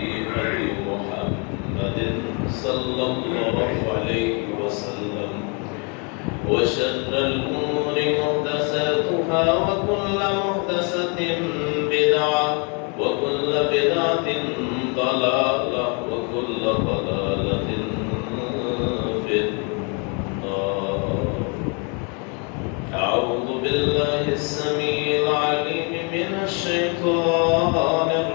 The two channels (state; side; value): quieter; right; 35.2 dB